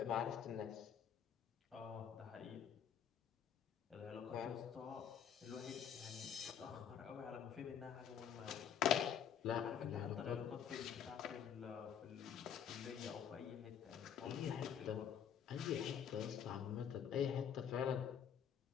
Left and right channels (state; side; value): quieter; right; 8.5 dB